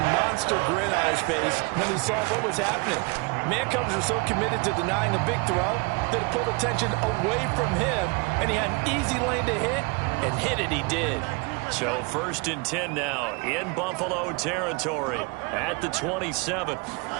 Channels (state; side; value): quieter; left; 29.7 dB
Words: monster grin on his face when he saw what was happening. Mancovers were so committed to denying a big throw that it pulled attention away from him, and he had an easy lane to hit, and hit it he did. So 1st and 10 now in Buffalo territory at the 27.